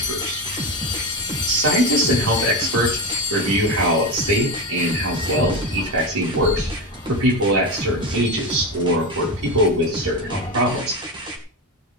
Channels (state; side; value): normal; both; correlation 0.18